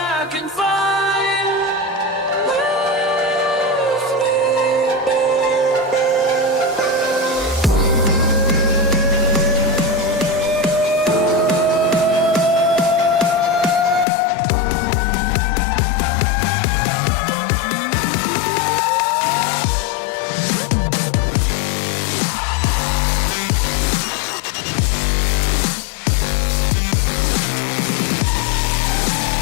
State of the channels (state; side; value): drops out; right; at 14.1 s